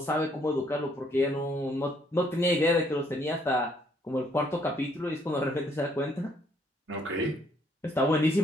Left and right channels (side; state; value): both; normal; correlation 0.67